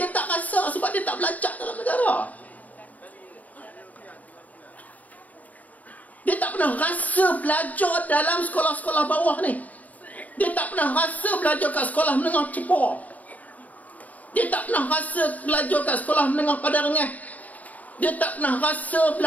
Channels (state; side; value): late; right; 0.073 ms